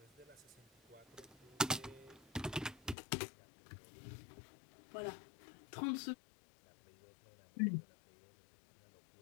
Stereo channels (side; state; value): right; drops out; at 3.0 s